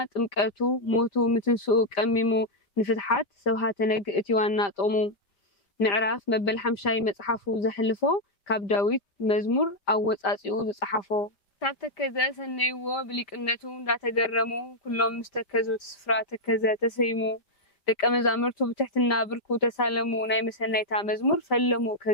ጥምቀቱ ሞቱ ምትንስኡ ቀሚሙ ንፍትሓት ሰብሃተ ነግ እቲ ዋና ጥቕሙ ምዕራፍ መበል 5 መጽሓፉ ዘሕልፎ ካብ ዳዊት መዝሙር ኣብ ወጻጺኡ ዝጸሓፎ ካብ ተከዘ ሰነይዎ ብሊቅነቱ እንዳተገረሙ ኩሎም ምስተከዙ ስፍራ ተከዘ ተሰይሙ ደቀ መዛሙርቱ ብትሕትና ብርኩ ተሳለሙ ናይ መሰናይታ መዝሙር ፈለሙ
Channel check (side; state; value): right; late; 5.1 ms